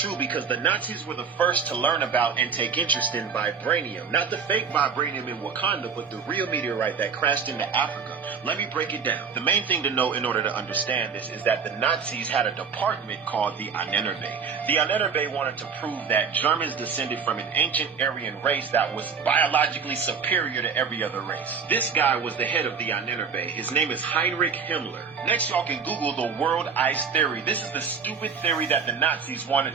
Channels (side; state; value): left; quieter; 6.1 dB